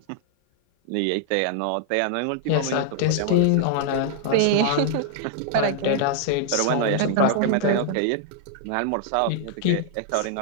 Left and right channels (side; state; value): both; different; correlation 0.00